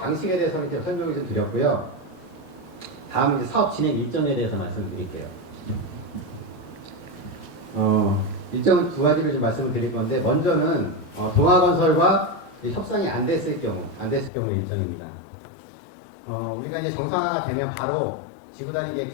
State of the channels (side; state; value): right; drops out; at 14.3 s